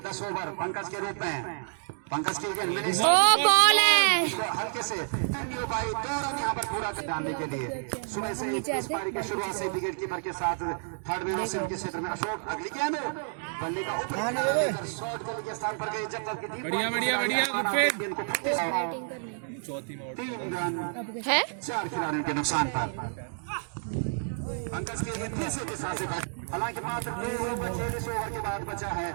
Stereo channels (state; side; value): silent; left; digital silence